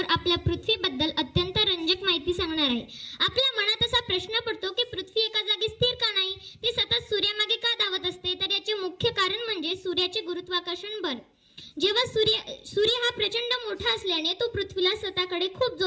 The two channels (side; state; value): both; identical; correlation 1.00